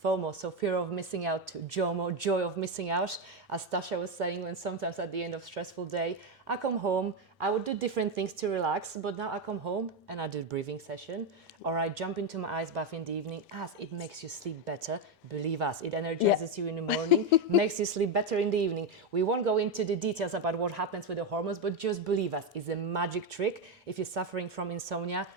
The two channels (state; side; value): normal; both; correlation 0.07